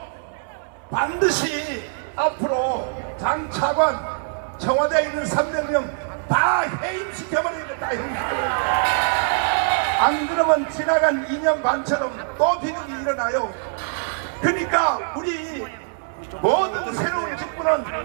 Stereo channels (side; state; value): left; silent; 61 dB below the other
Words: 반드시 앞으로 장 차관 청와대에 있는 300명 다 해임시켜버리겠다. 다 해임시켜버리겠다. 안 그러면 지나간 2년 반처럼 또 비극이 일어나요. 그러니까 우리 모든 새로운